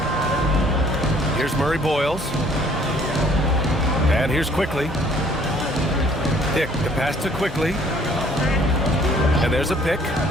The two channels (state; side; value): normal; both; correlation 0.59